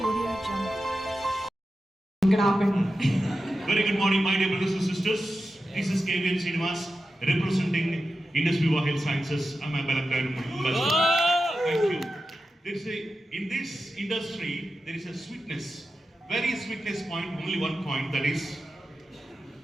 Audio Jungle. Very good morning, my dear brothers and sisters. This is KVN Srinivas representing Indus Viva Health Sciences. I'm a Balakran ambassador. Thank you. In this industry, there is a sweetness, very sweetness point, only one point, that is,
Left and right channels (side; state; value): both; normal; correlation 0.91